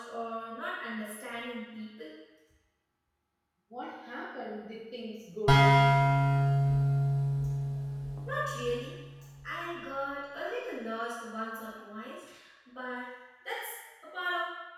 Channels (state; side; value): identical; both; correlation 1.00